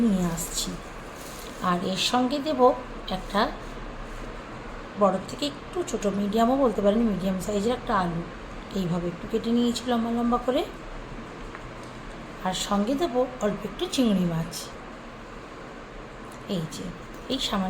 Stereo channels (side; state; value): both; identical; correlation 1.00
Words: নিয়ে আসছি। আর এর সঙ্গে দেব একটা বড় থেকে একটু ছোটো, মিডিয়ামও বলতে পারেন, মিডিয়াম সাইজের একটা আলু এইভাবে একটু কেটে নিয়েছি লম্বা লম্বা করে। আর সঙ্গে দেবো অল্প একটু চিংড়ি মাছ। এই